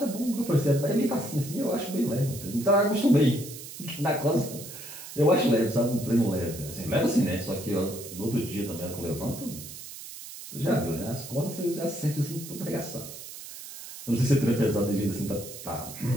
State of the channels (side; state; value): right; noise; hiss, 12 dB below the sound